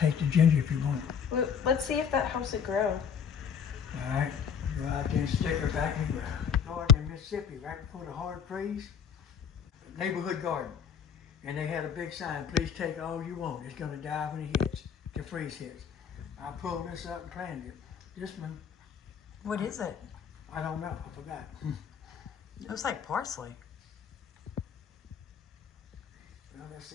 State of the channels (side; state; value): right; quieter; 7.1 dB